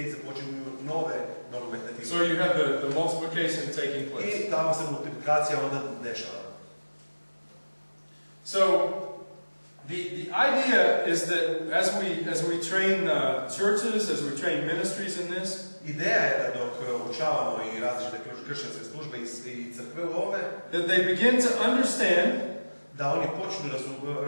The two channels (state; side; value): inverted; both; correlation -1.00